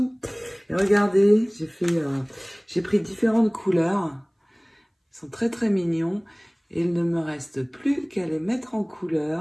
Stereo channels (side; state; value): both; identical; correlation 1.00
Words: Et regardez, j'ai pris différentes couleurs. Ils sont très très mignons. Et il ne me reste plus qu'à les mettre en